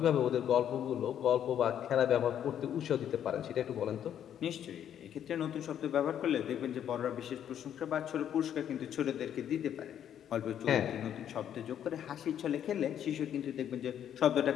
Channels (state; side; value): quieter; right; 9.8 dB